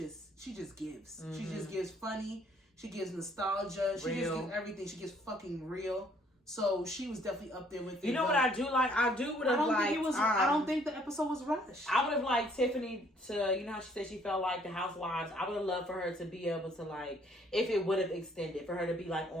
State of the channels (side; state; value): both; normal; correlation 0.63